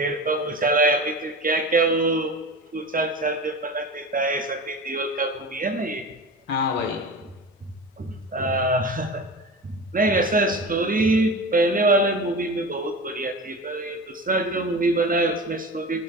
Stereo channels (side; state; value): both; normal; correlation 0.31